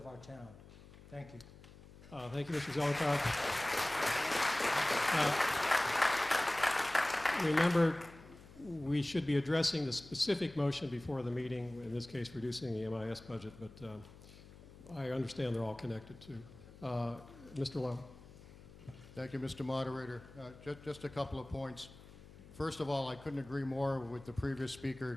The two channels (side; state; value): left; noise; hum, 19 dB below the sound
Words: our town. Thank you. Thank you, Mr. Zelenkoff. Remember, we should be addressing the specific motion before the meeting, in this case reducing the MIS budget, but I understand they're all connected too. Mr. Lowe. Thank you, Mr. Moderator. Just a couple of points. First of all, I couldn't agree more with the previous speaker.